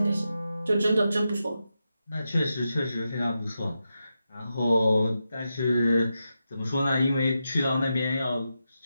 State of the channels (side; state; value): both; inverted; correlation -0.88